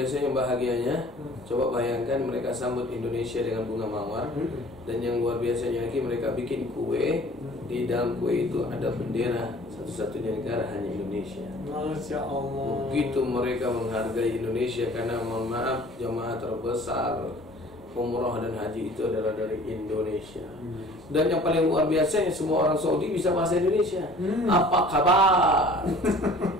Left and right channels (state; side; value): normal; both; correlation 0.49